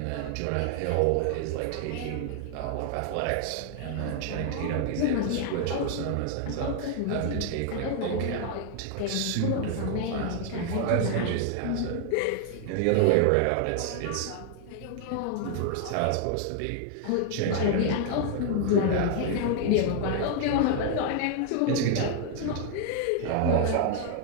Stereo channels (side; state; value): both; different; correlation 0.00